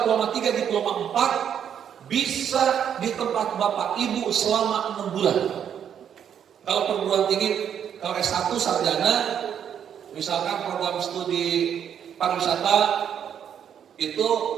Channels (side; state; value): left; quieter; 8.7 dB